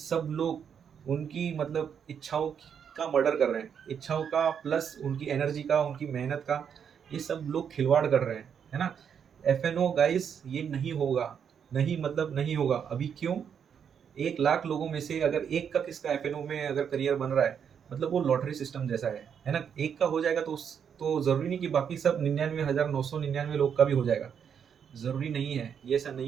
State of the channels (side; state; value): left; quieter; 7.7 dB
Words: लोग उनकी मतलब इच्छाओं का मर्डर कर रहे हैं। इच्छाओं का प्लस उनकी एनर्जी का, उनकी मेहनत का, ये सब लोग खिलवाड़ कर रहे हैं, है ना? एफएनओ गाइस, ये नहीं होगा, नहीं मतलब नहीं होगा। अभी क्यों? 1 लाख लोगों में से अगर एक का किसका एफएनओ में अगर करियर बन रहा है, मतलब वो लॉटरी सिस्टम जैसा है ना? एक का हो जाएगा तो जरूरी नहीं कि बाकी सब 99,999 लोग का भी हो जाएगा। जरूरी नहीं है, ये ऐसा